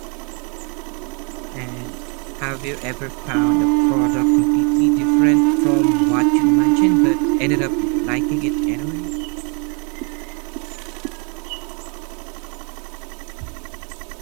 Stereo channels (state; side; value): quieter; left; 35.5 dB